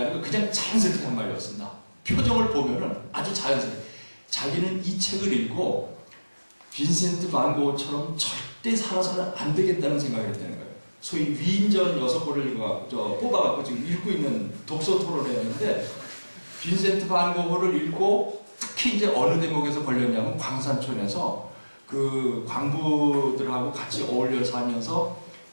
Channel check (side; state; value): both; inverted; correlation -1.00